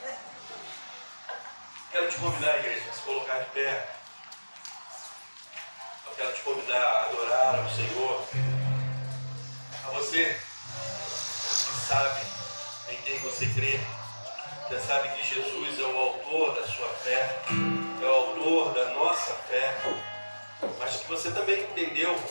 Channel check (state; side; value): inverted; both; correlation -1.00